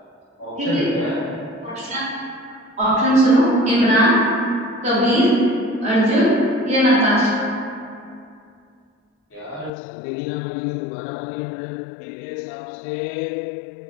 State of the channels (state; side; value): drops out; right; at 9.7 s